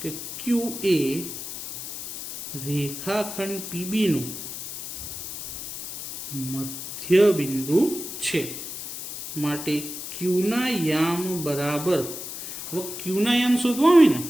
કે q એ રેખાખંડ PB નું મધ્ય બિંદુ છે. માટે q ના યામ બરાબર, હવે q ના યામ શોધવા હોય ને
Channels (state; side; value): noise; left; hiss, 8 dB below the sound